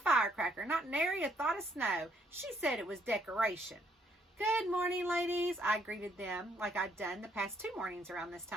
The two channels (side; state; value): both; normal; correlation 0.70